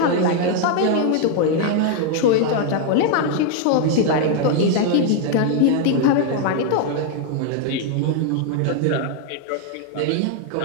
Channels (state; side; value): different; both; correlation 0.00